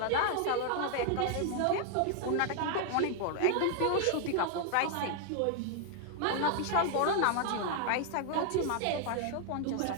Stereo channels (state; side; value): different; both; correlation 0.00